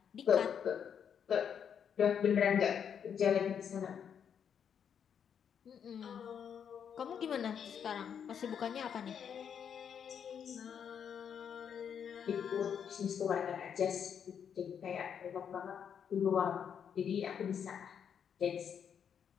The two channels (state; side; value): quieter; right; 7.9 dB